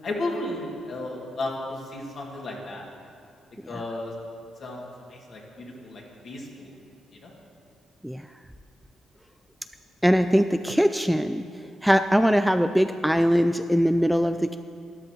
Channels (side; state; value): both; normal; correlation 0.97